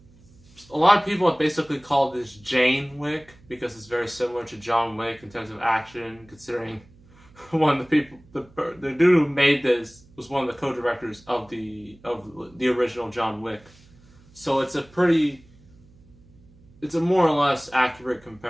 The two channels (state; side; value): noise; right; hum, 27 dB below the sound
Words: A lot of people have basically called this Jane Wick because it's very similar to John Wick in terms of action, considering one of the people, the dude who made this was one of the co-directors of the original John Wick. So it's a more or less accurate